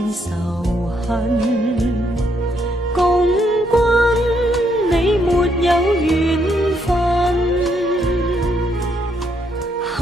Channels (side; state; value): both; normal; correlation 0.74